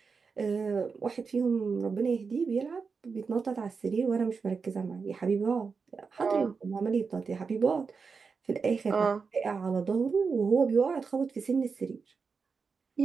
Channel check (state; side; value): quieter; left; 5.1 dB